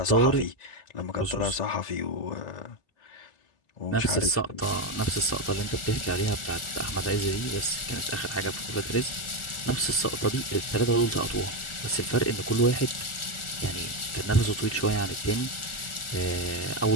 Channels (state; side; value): late; right; 1.4 ms